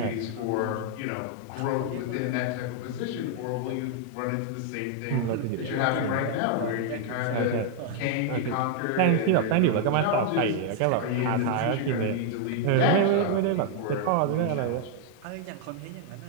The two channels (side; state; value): both; different; correlation 0.00